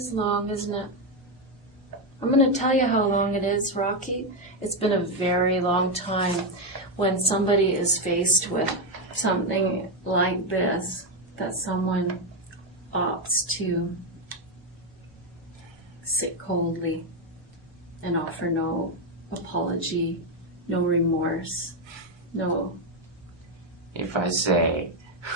long, isn't it? I'm going to tell you how long it is, Rocky. It's been a very long time when somebody is faced with something like this, that someone opts to sit coldly and offer no apology, no remorse, no... If I say,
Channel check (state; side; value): normal; both; correlation 0.06